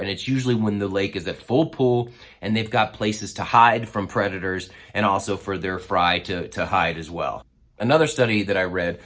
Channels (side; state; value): both; identical; correlation 1.00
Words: it's usually when the lake is at full pool and they've got places to hide from predators and also for their fry to hide as well. Another study that I read